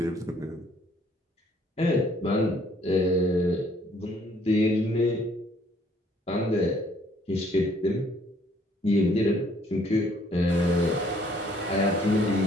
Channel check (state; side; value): normal; both; correlation 0.62